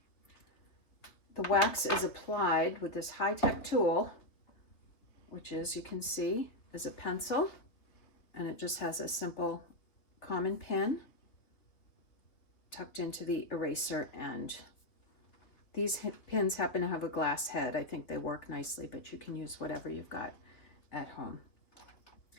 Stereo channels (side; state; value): right; late; 3.5 ms